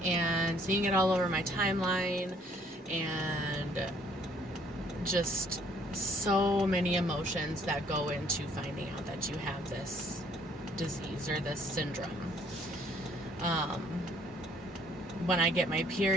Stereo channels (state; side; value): normal; both; correlation 0.62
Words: and seeing it all over my timeline, and just so many emotions that go into finding out that you have this disease or this syndrome. When I get my